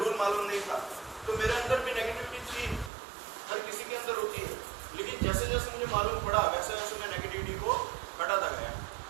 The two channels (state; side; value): drops out; left; at 2.9 s